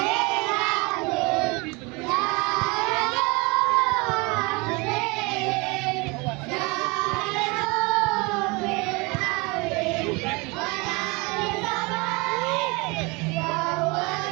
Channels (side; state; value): left; quieter; 27.1 dB